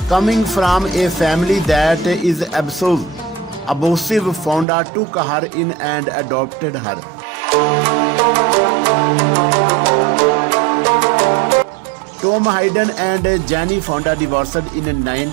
Coming from a family that is abusive, Fonda took her in and adopted her. Tom Hayden and Јане Fonda divorced in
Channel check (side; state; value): left; drops out; at 4.7 s